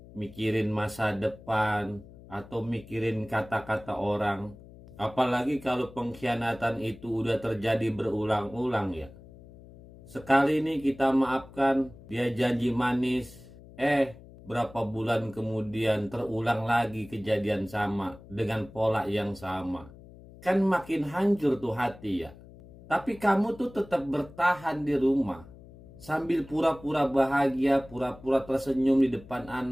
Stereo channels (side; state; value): left; noise; hum, 20 dB below the sound